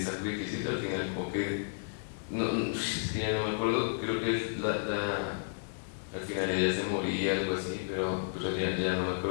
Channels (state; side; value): silent; right; digital silence